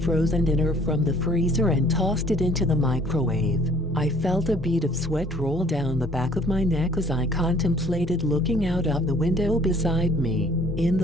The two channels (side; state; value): both; normal; correlation 0.56